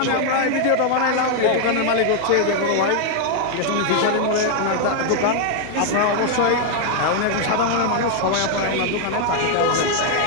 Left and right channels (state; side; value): different; both; correlation 0.00